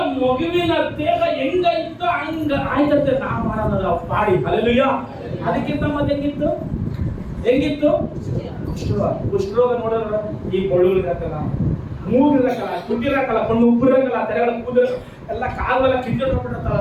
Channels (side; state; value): both; identical; correlation 1.00